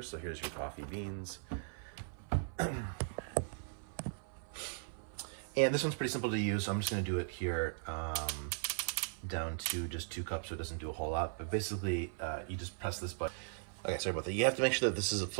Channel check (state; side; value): silent; left; 52 dB below the other